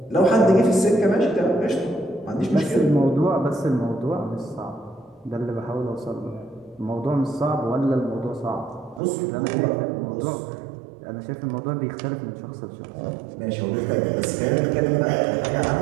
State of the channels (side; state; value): left; drops out; at 9.0 s